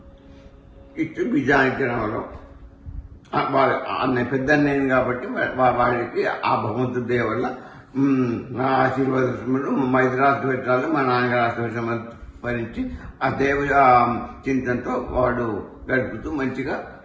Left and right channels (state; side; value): identical; both; correlation 1.00